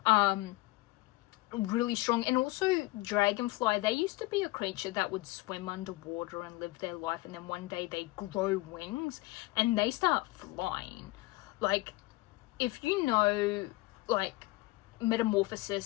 Really strong. And also dragonfly, they used to be a creature that would swim underwater and live their life, and then one day they grow wings and they start flying. Like, if you know, like,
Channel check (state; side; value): quieter; right; 20.6 dB